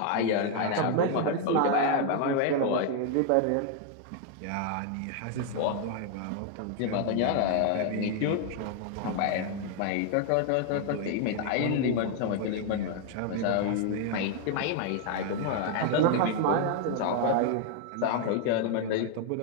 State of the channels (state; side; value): different; both; correlation 0.00